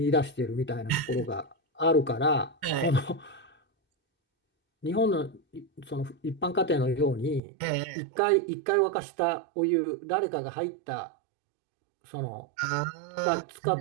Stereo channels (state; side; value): drops out; left; at 7.4 s